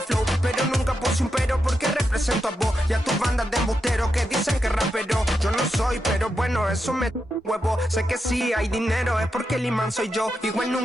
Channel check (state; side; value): normal; both; correlation 0.86